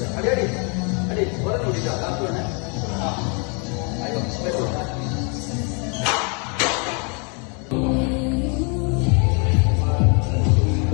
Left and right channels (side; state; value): right; quieter; 35.9 dB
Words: അടി അടി അടി ഓരോ ഓടിക്കാം ലാസ്റ്റ് വേണേ